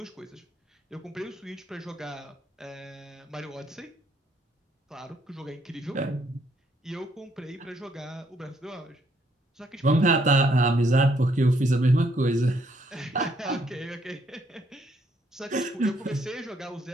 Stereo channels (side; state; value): both; normal; correlation 0.70